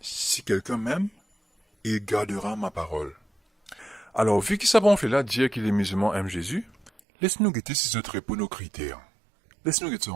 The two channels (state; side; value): drops out; left; at 7.0 s